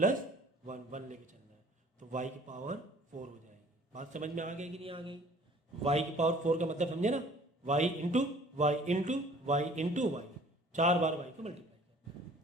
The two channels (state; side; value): normal; both; correlation 0.52